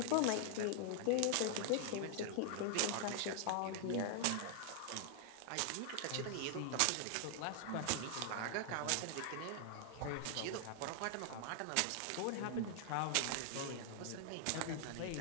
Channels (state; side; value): different; both; correlation 0.00